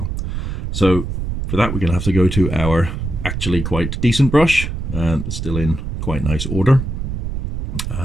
So for that we're going to have to go to our actually quite decent brush, and it's still in quite nice order.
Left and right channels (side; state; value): right; noise; rumble, 4 dB below the sound